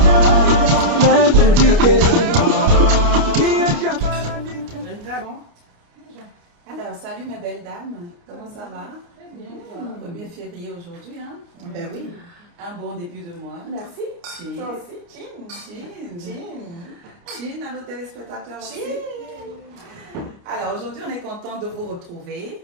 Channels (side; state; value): left; late; 29 ms